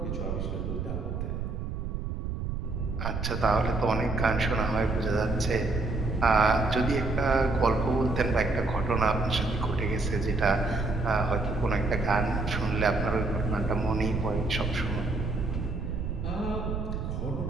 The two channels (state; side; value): noise; right; rumble, 3 dB below the sound